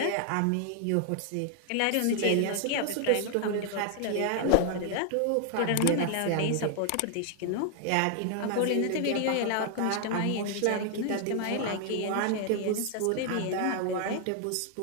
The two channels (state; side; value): different; both; correlation 0.00